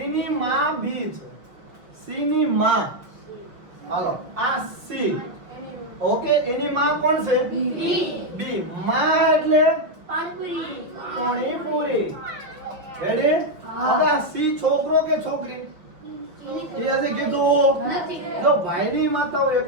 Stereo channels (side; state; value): left; late; 5.9 ms